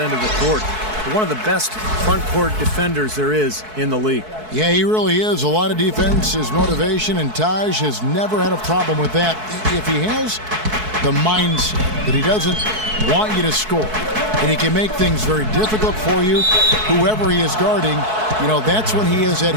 of the court. One of the best front court defenders there is in the league. Yeah, he really is. A lot of defense, his motivation, and Taj has never had a problem with that. If he has the mindset that he doesn't want you to score, and he can make things very difficult for you, whoever he is guarding, you know, that's when he is at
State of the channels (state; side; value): late; left; 4.6 ms